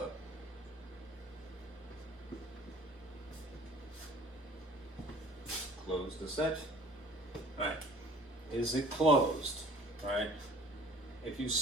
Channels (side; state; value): both; normal; correlation 0.50